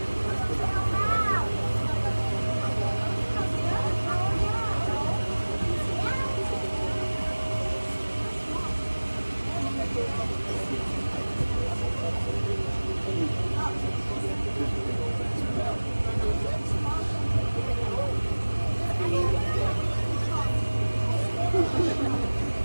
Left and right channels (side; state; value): both; inverted; correlation -1.00